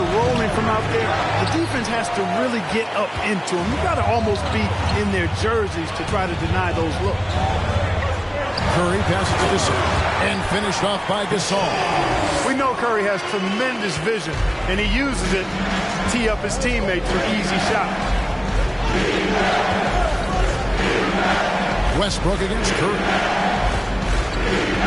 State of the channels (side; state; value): both; identical; correlation 1.00